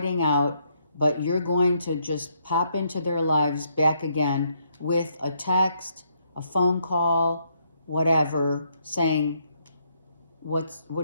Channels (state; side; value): inverted; both; correlation -0.73